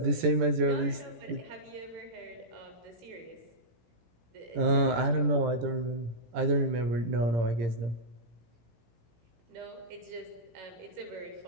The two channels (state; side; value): late; left; 17 ms